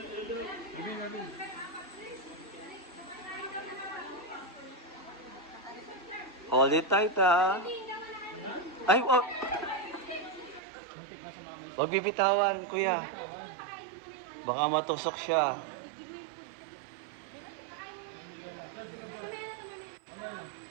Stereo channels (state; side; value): drops out; left; at 10.6 s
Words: Hold it tight, ha? Ay, oh. Huwag bibitawan, kuya. Baka matusok siya.